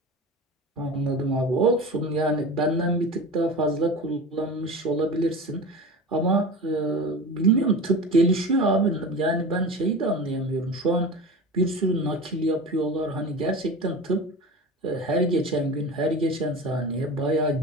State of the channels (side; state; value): both; normal; correlation 0.31